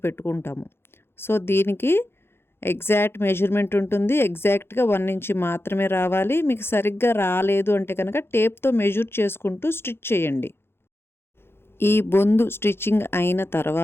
పెట్టుకుంటాము. సో, దీనికి ఎగ్జాక్ట్ మెజర్‌మెంట్ ఉంటుంది. ఎగ్జాక్ట్‌గా 1 ఇంచి మాత్రమే రావాలి. మీకు సరిగ్గా రాలేదు అంటే కనుక టేప్‌తో మెజర్ చేసుకుంటూ స్టిచ్ చేయండి. ఈ బొందు స్టిచ్చింగ్ అయిన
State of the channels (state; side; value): late; right; 0.11 ms